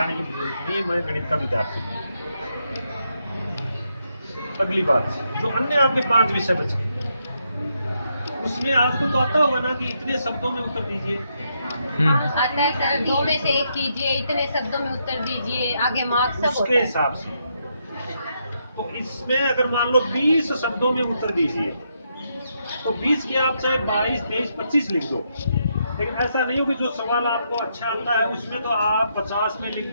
की जरूरत नहीं है, मैं गणित का विद्यार्थी हूँ। अगली बात, जो अन्य आपके 5 विषय बचे, उसमें आपको तो आता होगा ना कि इतने शब्दों में उत्तर दीजिए। आता है सर, 2 में से 1 कीजिए, इतने शब्दों में उत्तर दीजिए, आगे मार्क्स सब उसके हिसाब से। तो इसमें अगर मान लो 20 शब्दों में उत्तर दीजिए, तो 20 की आप चाहे 22, 23, 25 लिख दो, लेकिन ऐसा नहीं हो कि जो सवाल आपको अच्छा आता है उसमें तो आप 50 में लिख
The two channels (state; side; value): inverted; both; correlation -0.79